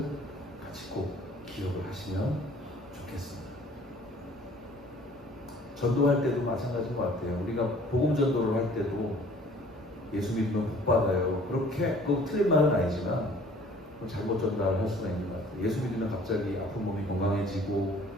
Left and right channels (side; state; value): both; normal; correlation 0.53